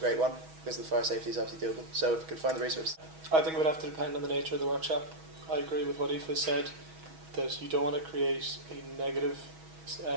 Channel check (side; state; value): left; late; 6.2 ms